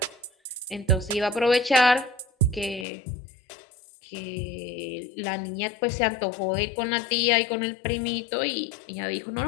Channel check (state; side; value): drops out; right; at 2.9 s